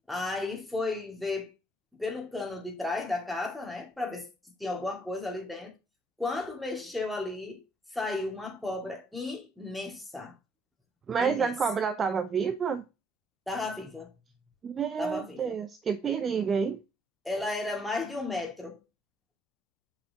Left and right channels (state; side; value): normal; both; correlation 0.69